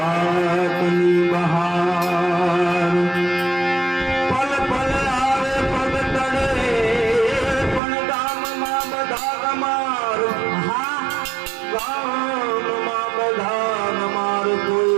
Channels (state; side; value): drops out; left; at 7.8 s